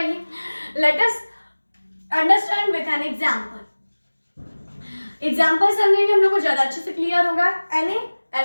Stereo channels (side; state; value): both; inverted; correlation -1.00